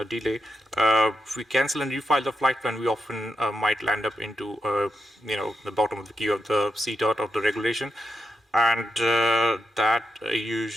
delay, if we cancel and refile the flight plan, we often might land up into, the bottom of the queue of the CTOT of the regulation. And that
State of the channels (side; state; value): both; normal; correlation 0.85